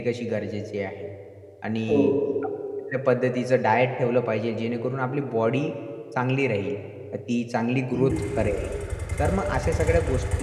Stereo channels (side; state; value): both; identical; correlation 1.00